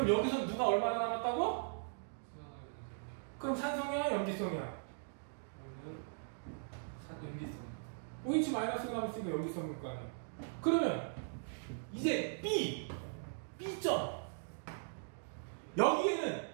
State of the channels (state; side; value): silent; left; digital silence